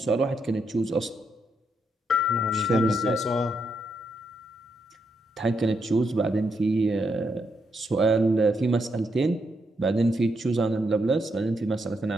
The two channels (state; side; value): normal; both; correlation 0.80